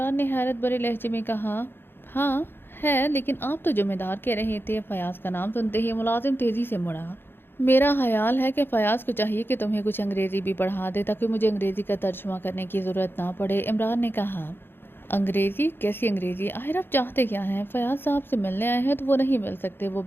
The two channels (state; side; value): late; right; 0.10 ms